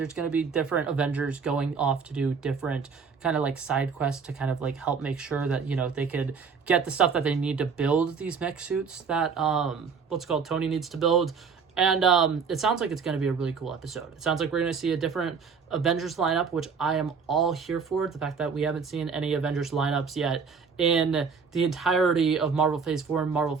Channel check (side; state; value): left; quieter; 5.7 dB